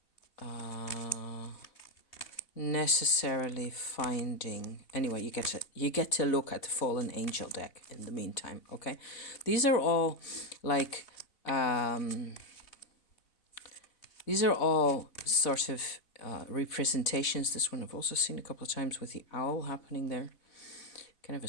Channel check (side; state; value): right; late; 3.5 ms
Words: necessarily finding. Anyway, you get to look at the Fallen Angel deck in the meantime. Okay, these are all like these are all sort of representations. This one I've also seen a couple of times with the owl happening there. Kind of a